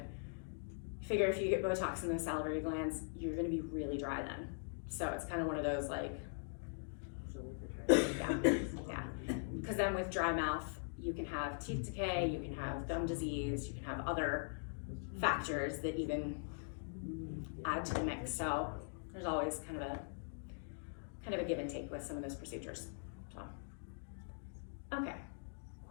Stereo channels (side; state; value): right; silent; digital silence